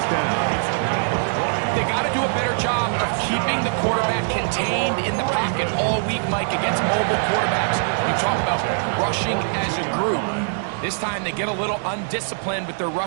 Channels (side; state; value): left; silent; digital silence